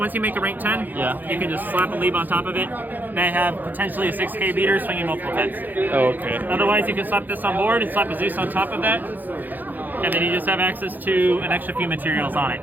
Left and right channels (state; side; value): late; left; 0.086 ms